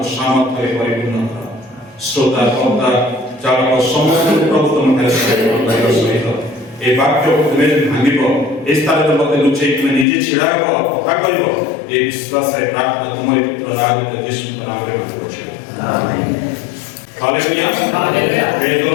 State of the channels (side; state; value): right; drops out; at 10.1 s